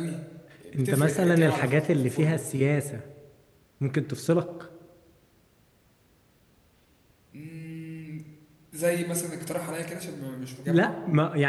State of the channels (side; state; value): both; identical; correlation 1.00